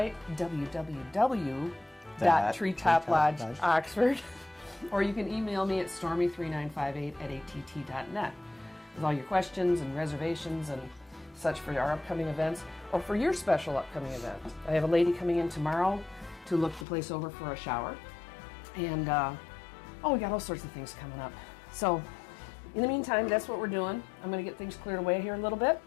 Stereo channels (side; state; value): right; drops out; at 16.9 s